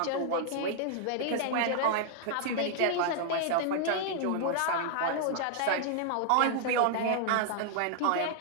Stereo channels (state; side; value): different; both; correlation 0.00